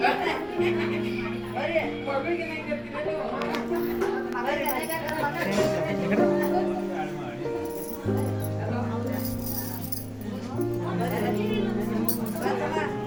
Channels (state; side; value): identical; both; correlation 1.00